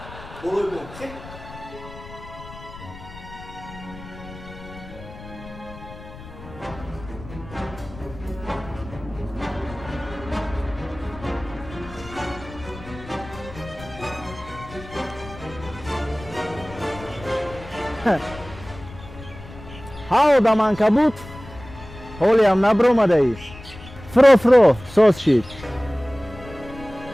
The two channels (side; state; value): left; noise; rumble, 16 dB below the sound